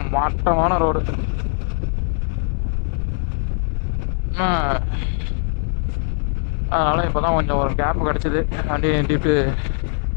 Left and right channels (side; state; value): right; silent; digital silence